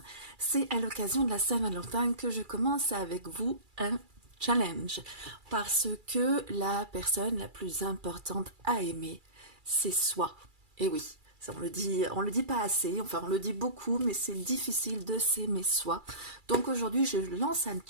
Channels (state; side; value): late; left; 2.3 ms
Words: C'est à l'occasion de la Saint-Valentin que je commence avec vous un challenge, parce que la personne la plus importante à aimer, c'est soi. Et oui. Ça, on le dit pas assez, enfin on le dit beaucoup, mais c'est difficile de s'aimer soi. Donc aujourd'hui, je lance un